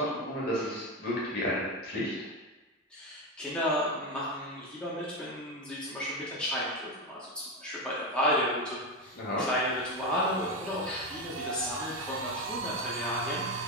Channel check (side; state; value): both; normal; correlation 0.14